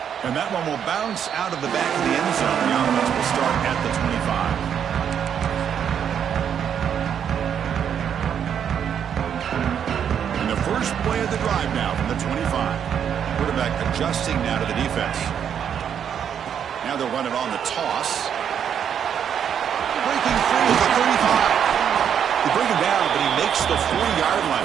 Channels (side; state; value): left; quieter; 8.4 dB